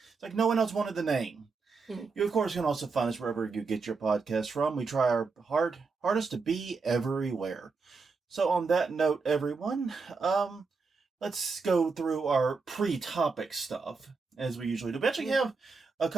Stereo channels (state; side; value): quieter; left; 4.5 dB